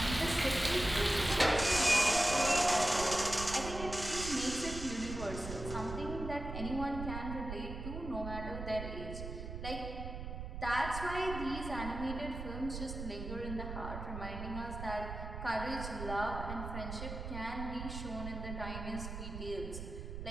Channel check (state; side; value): noise; right; rumble, 7 dB below the sound